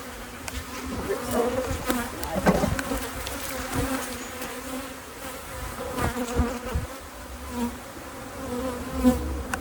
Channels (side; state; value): both; identical; correlation 1.00